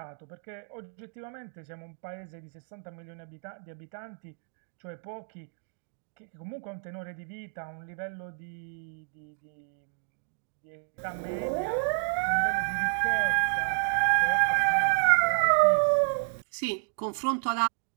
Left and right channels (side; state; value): left; silent; 58 dB below the other